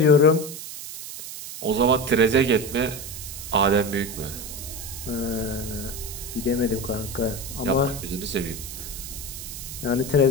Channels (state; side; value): noise; right; hiss, 10 dB below the sound